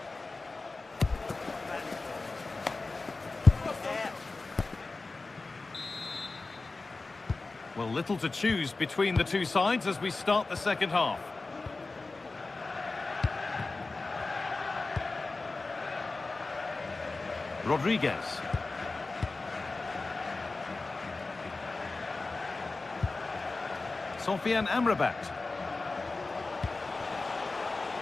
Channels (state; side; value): quieter; right; 3.6 dB